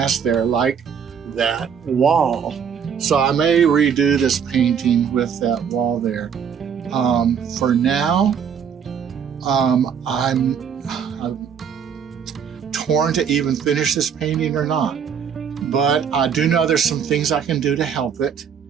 there, like that wall. So I may redo this painting with that wall there. For now, I'm torn to even finish this painting or not. But I do know there's some things I can do to help it.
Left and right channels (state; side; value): quieter; left; 7.4 dB